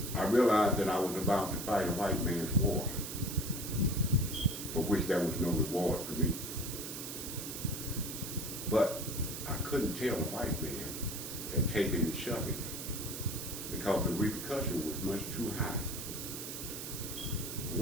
I realized that I was about to fight a white man's war, for which there was no reward for me. But I couldn't tell a white man that taking and shoving, because the repercussion was much too high.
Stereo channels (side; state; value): right; noise; hiss, 7 dB below the sound